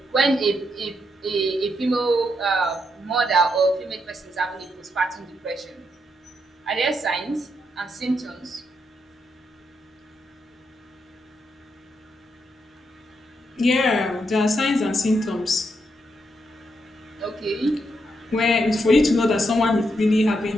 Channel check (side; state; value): both; normal; correlation 0.80